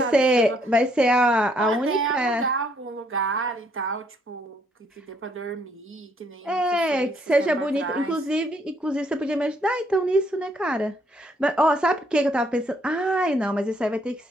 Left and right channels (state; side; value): normal; both; correlation 0.69